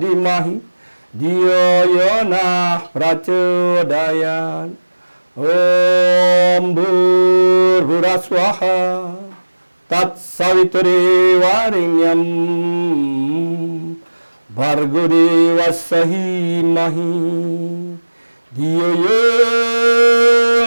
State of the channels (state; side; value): inverted; both; correlation -1.00